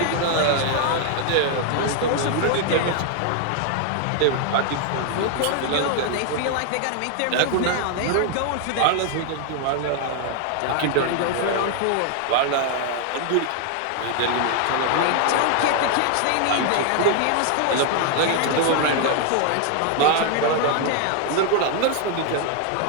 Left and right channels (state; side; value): different; both; correlation 0.00